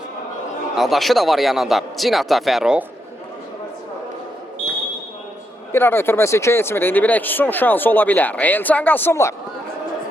Adaşı da var yanında. Cinata Fəruq. Bir ara ötürməsi keçmir. İndi bir son şansı ola bilər. Elcan Qasımlı.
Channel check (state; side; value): normal; both; correlation 0.81